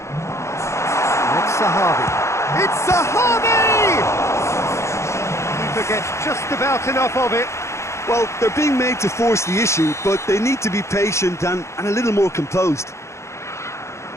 It's Zahavi. It's Zahavi! Keeper gets just about enough of it. Well, they're being made to force the issue, but they need to be patient and a little more composed.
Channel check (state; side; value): late; right; 0.14 ms